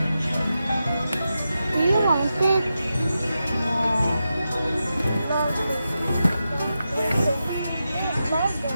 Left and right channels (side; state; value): both; inverted; correlation -0.89